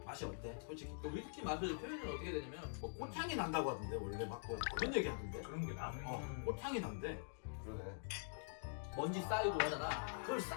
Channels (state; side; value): silent; right; digital silence